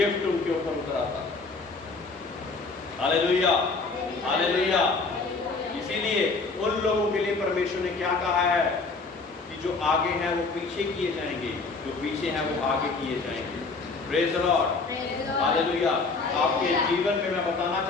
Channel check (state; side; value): quieter; right; 4.0 dB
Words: उनके ऊपर उतर आता। Hallelujah, hallelujah. इसीलिए उन लोगों के लिए परमेश्वर ने क्या कहा है कि जो आगे हैं वो पीछे किए जाएंगे, जो पीछे हैं वो आगे किए जाएंगे। Praise the Lord, hallelujah. आपके जीवन में मैं बताना